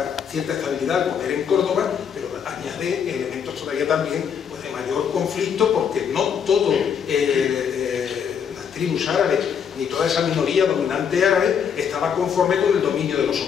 cierta estabilidad al poder en Córdoba, pero añade elementos todavía también pues, de mayor conflicto, porque no todo las tribus árabes ni toda esa minoría dominante árabe estaba conforme con el dominio de los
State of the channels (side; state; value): right; quieter; 7.5 dB